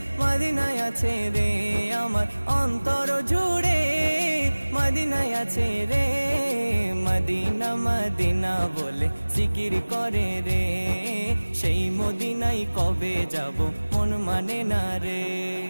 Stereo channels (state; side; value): inverted; both; correlation -1.00